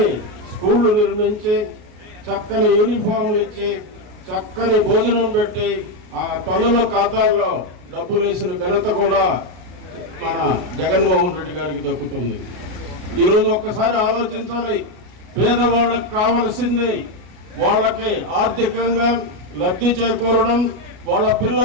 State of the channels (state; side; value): late; left; 33 ms